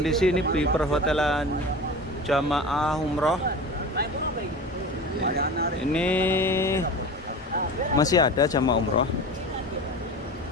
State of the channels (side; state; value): both; normal; correlation 0.33